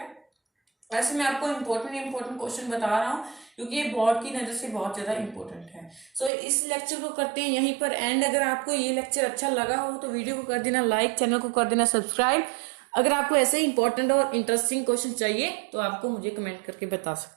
ऐसे मैं आपको इंपॉर्टेंट क्वेश्चन बता रहा हूँ क्योंकि ये बोर्ड की नजर से बहुत ज्यादा इंपॉर्टेंट है। सो इस लेक्चर को करते हैं यहीं पर एंड। अगर आपको ये लेक्चर अच्छा लगा हो तो वीडियो को कर देना लाइक, चैनल को कर देना सब्सक्राइब। अगर आपको ऐसे इंपॉर्टेंट और इंटरेस्टिंग क्वेश्चन चाहिए तो आपको मुझे कमेंट करके बता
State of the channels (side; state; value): left; drops out; at 6.3 s